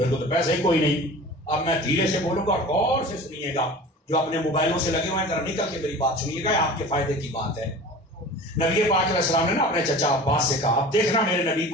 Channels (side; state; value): both; normal; correlation 0.39